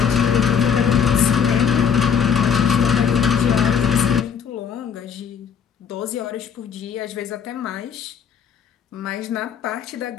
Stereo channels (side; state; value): right; quieter; 7.3 dB